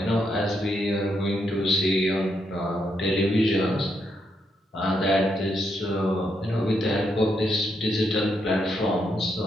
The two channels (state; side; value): normal; both; correlation 0.79